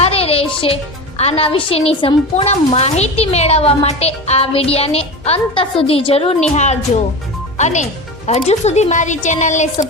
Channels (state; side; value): normal; both; correlation 0.27